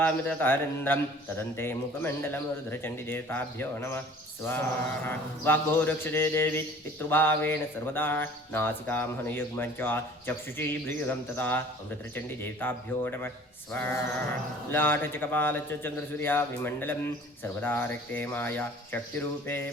तथारिन्द्रं तदन्ते मुखमण्डलं रुद्रचण्डीदेवताभ्यो नमः स्वाहा वाग्भो रक्षते देवी पितृभावेन सर्वदा नासिकां हनुयुग्मं च चक्षुषी भ्रूयुगं तथा ॐ रुद्रचण्डीदेवताभ्यो नमः स्वाहा लाटच कपालच्च चन्द्रसूर्या विमण्डलं सर्वदा रक्ते माया शक्तिरूपे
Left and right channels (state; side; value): normal; both; correlation 0.49